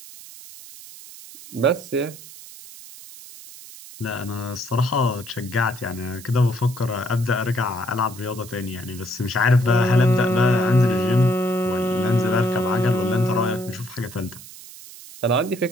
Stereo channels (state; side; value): noise; right; hiss, 17 dB below the sound